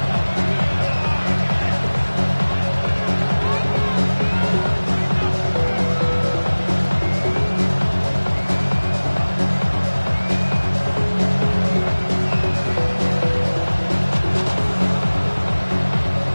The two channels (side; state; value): both; inverted; correlation -1.00